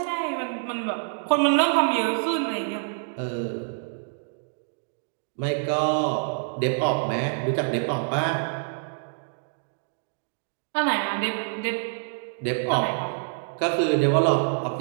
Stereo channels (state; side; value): silent; left; digital silence